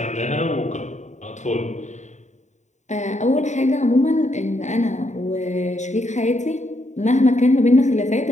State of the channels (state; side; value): late; right; 0.34 ms